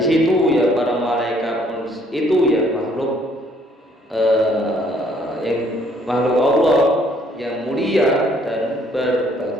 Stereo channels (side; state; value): both; normal; correlation 0.64